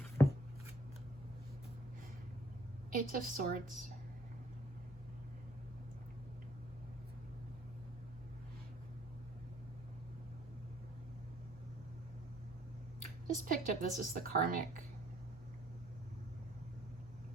Eight of Swords. Just picked up, this is the karmic.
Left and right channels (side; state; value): both; normal; correlation 0.62